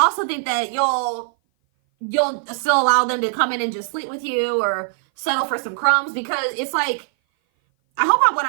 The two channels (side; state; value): left; silent; 58 dB below the other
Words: think that you'll still allow them to come in and just sleep with you or settle for some crumbs, because it's like, I hope what